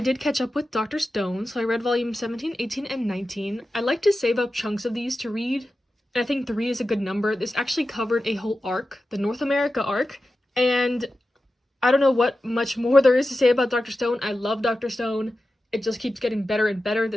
did catch up with Dr. Stone, so I read volume 17, 18, and 19. I like to save up chunks of these to read, and I think 3 is a good number. This actually covered a whole arc, the North America arc, and I don't know what much more there is to say about Dr. Stone. I love Dr. Stone. It just keeps getting better and better.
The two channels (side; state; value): both; normal; correlation 0.93